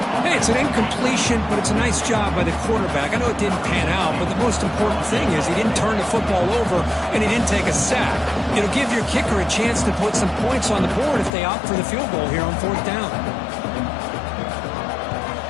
Hey, it's an incompletion, but it's a nice job by the quarterback. I know it didn't pan out, but the most important thing is he didn't turn the football over and he didn't take a sack. It'll give your kicker a chance to put some points on the board if they opt for the field goal here on fourth down.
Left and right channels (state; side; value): drops out; right; at 11.3 s